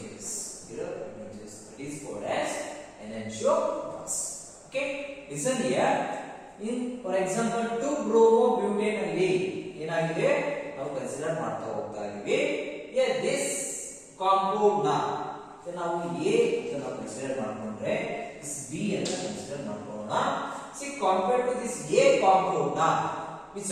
Mirror images. That is called as enantiomers. Okay, listen here. In for example 2-bromobutane ಅಲ್ಲಿ ಏನಾಗಿದೆ ನಾವು consider ಮಾಡ್ತಾ ಹೋಗ್ತಾ ಇದೀವಿ. This compound ನ ನಾವು A ಅಂತ consider ಮಾಡ್ಕೊಂಡ್ರೆ this B ಅಂತ ಕನ್ಸಿಡರ್ ಮಾಡ್ಕೊಳ್ಳೋಣ. See, compared to this A compound ನ which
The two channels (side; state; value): both; identical; correlation 1.00